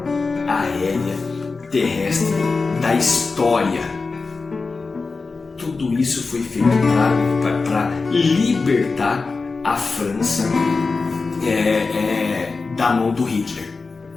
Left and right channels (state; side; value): quieter; right; 4.1 dB